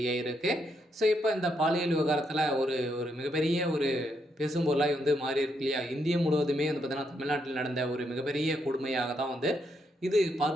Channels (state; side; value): normal; both; correlation 0.77